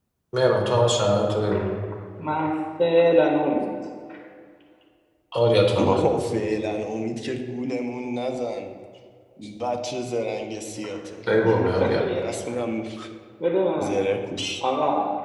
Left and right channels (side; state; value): both; identical; correlation 1.00